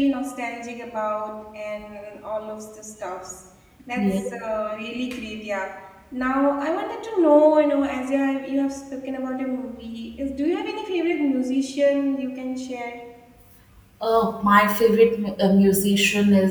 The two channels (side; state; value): both; identical; correlation 1.00